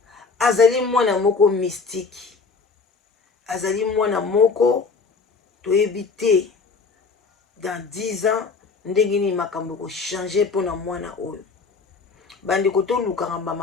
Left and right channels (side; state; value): right; quieter; 4.6 dB